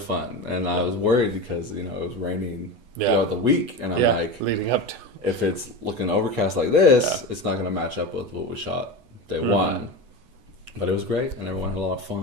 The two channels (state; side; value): late; left; 8.1 ms